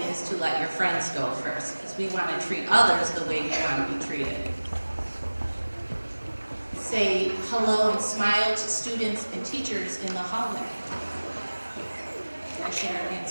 is to let your friends go first, because we want to treat others the way we want to be treated. Say hello and smile to students and teachers in the hallway. Can I share an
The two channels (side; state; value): both; inverted; correlation -1.00